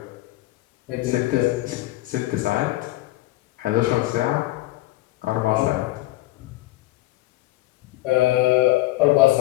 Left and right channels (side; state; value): right; quieter; 18.3 dB